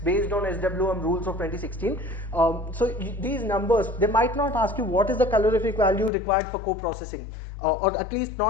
based on SWM rules of 2016. So these numbers, they might not ask you what is the calorific value required for co-processing, or at least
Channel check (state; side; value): drops out; right; at 6.1 s